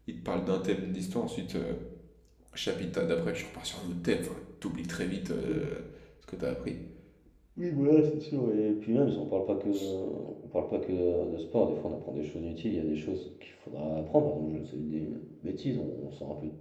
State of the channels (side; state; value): both; identical; correlation 1.00